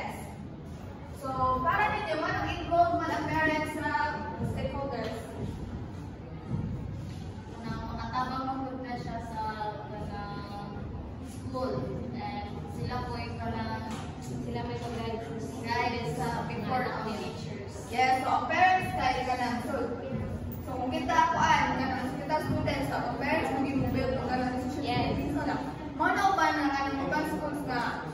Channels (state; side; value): identical; both; correlation 1.00